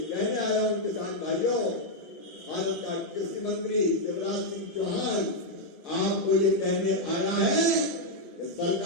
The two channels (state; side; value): normal; both; correlation -0.01